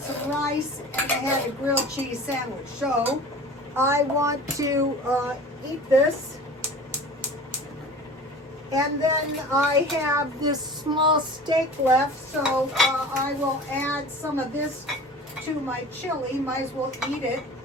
some rice, and I had a grilled cheese sandwich. So I want to eat this. And then I have this small steak left, so I will add some of this to my chili. Might as well eat it.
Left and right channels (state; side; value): normal; both; correlation 0.39